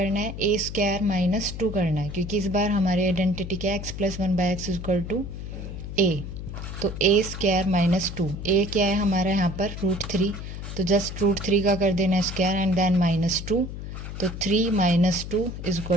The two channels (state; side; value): noise; left; hum, 8 dB below the sound